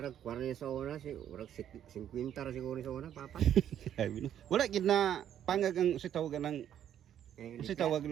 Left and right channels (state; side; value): quieter; left; 10.2 dB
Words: 40 sa una si urag 50 ra siguro sa una papa. Sabi na. Wala gid na pangag ang si tawagan ng si tawag